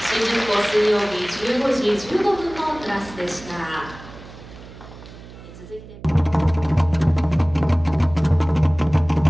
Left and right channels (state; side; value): noise; right; hum, 17 dB below the sound